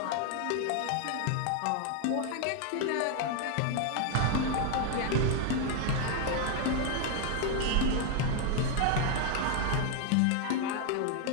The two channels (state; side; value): different; both; correlation 0.01